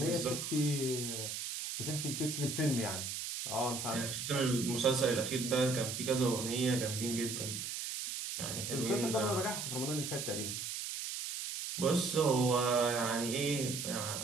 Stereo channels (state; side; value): noise; right; hiss, 4 dB below the sound